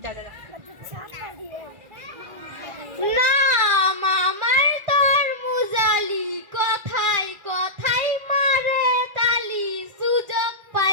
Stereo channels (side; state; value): left; late; 1.9 ms